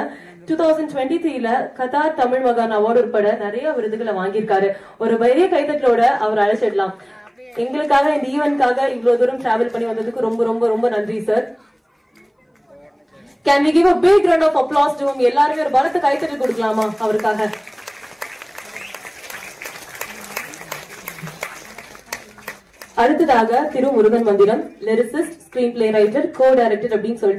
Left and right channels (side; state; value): both; identical; correlation 1.00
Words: 2023ல கத்தார் தமிழ் மகான் அவார்டு உட்பட நிறைய விருதுகளை வாங்கியிருக்காரு. ஒரு பெரிய கைத்தட்டலோட அவர் அழைச்சிடலாம். எங்களுக்காக இந்த ஈவென்ட்காக இவ்வளவு தூரம் டிராவல் பண்ணி வந்ததுக்கு ரொம்ப ரொம்ப ரொம்ப நன்றி sir. Can we give a big round of applause to him? எல்லாரும் ஒரு பலத்த கைத்தட்டல் கொடுக்கலாமா அவருக்காக? அடுத்ததாக திரு முருகன் மந்திரம், lyricist, screen play writer, co director அப்படின்னு